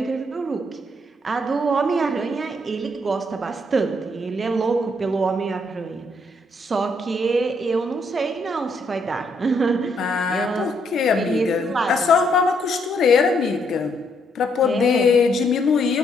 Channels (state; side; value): normal; both; correlation 0.73